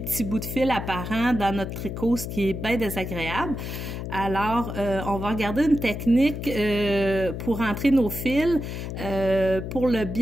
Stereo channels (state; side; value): noise; left; hum, 6 dB below the sound